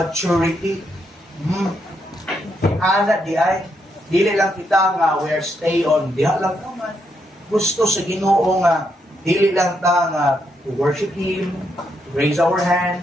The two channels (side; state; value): both; normal; correlation 0.79